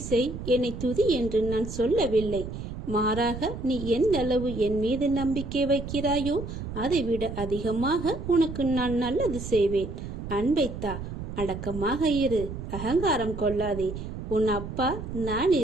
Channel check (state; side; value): noise; right; rumble, 8 dB below the sound